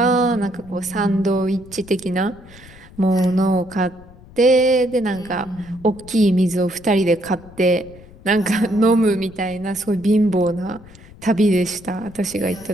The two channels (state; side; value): noise; left; rumble, 21 dB below the sound